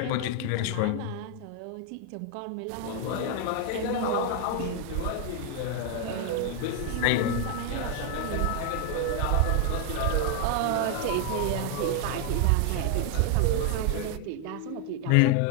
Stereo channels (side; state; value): both; different; correlation 0.00